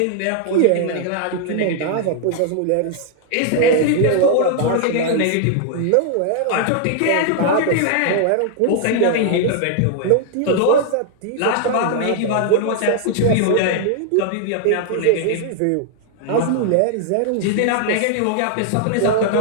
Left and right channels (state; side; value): different; both; correlation 0.00